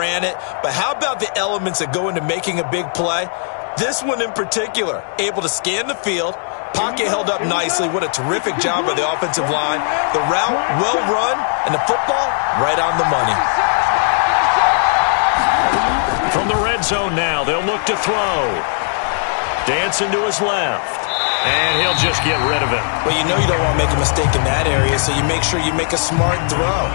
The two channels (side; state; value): right; silent; digital silence